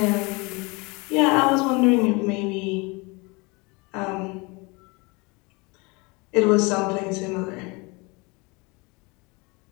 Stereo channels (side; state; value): right; quieter; 27.3 dB